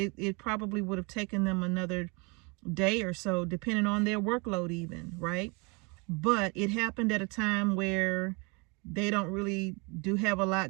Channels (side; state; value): left; quieter; 29.9 dB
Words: probably would have taken them another day or so, depending on their workload even, right? But it happened at a time where they don't really do have a